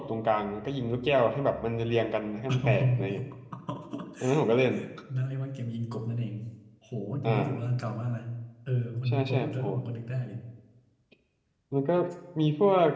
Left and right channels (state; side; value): identical; both; correlation 1.00